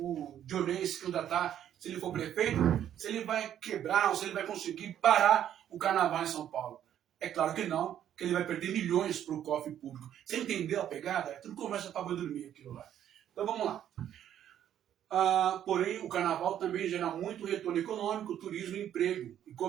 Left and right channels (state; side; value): quieter; left; 10.5 dB